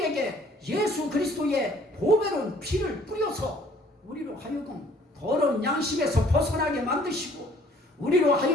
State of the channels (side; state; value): both; normal; correlation 0.58